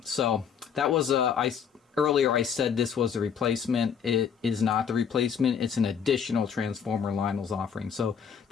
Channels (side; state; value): right; quieter; 7.3 dB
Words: So that was earlier I said this was a replacement. It is not the replacement. It's an additional transformer Lionel's offering. So